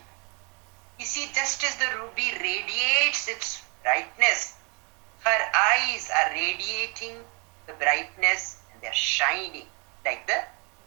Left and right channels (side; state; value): left; quieter; 33.7 dB